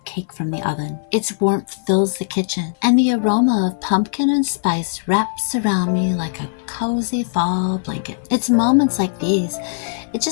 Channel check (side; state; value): right; silent; 59 dB below the other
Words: cake from the oven. Its warmth fills the kitchen, and the aroma of pumpkin and spice wraps around me like a cozy fall blanket. It's moments like these, it